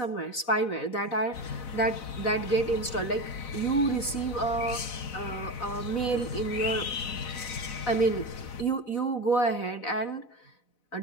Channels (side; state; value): right; late; 4.0 ms